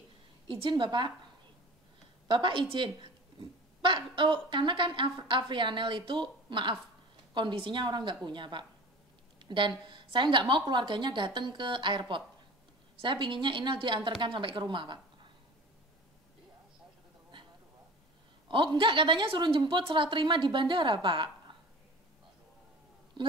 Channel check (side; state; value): both; normal; correlation 0.39